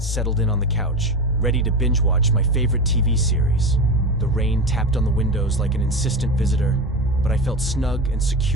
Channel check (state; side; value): normal; both; correlation 0.24